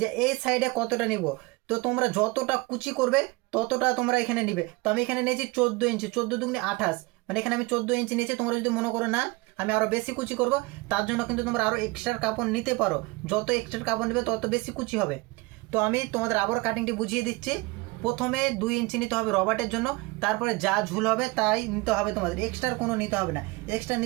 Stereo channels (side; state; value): left; quieter; 24.1 dB